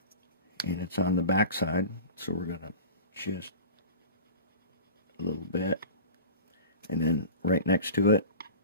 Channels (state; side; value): inverted; both; correlation -0.36